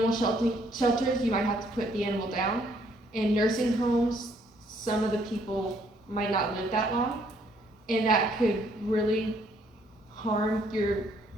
shelters, you might have to put the animal down. In nursing homes, some of the people might not live that long, and that could really harm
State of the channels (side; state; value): both; normal; correlation 0.67